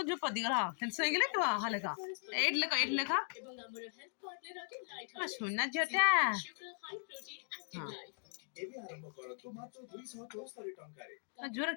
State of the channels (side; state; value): right; silent; 52 dB below the other